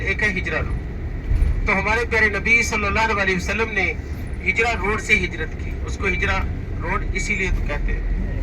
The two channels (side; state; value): both; identical; correlation 1.00